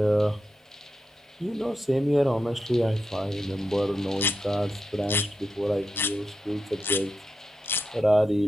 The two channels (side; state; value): both; normal; correlation 0.88